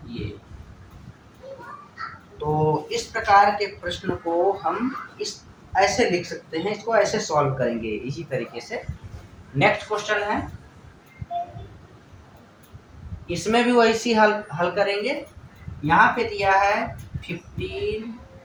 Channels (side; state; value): both; identical; correlation 1.00